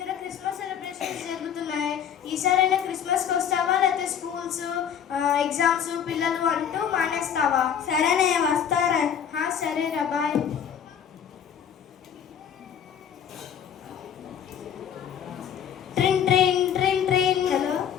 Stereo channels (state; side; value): quieter; right; 8.5 dB